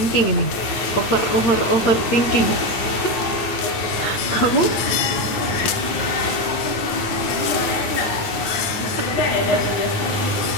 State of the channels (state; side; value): late; right; 9.1 ms